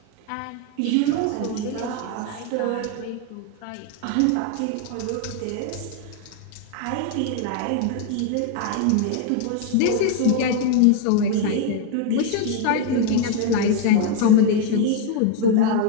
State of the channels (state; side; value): different; both; correlation 0.01